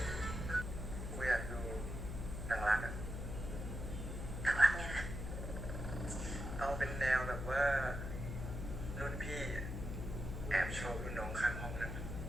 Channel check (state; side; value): noise; left; hum, 5 dB below the sound